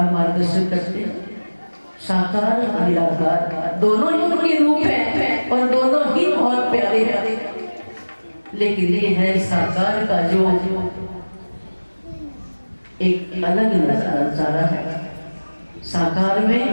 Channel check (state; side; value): inverted; both; correlation -1.00